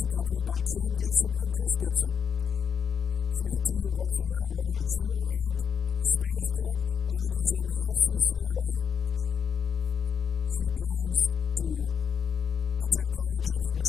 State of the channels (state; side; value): quieter; right; 7.0 dB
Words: accompanied by Kim Gibson and Chris Gibson. She is a 2-year varsity letter winner in cheer and Spanish club and is in the FCCLA. She plans to attend college, which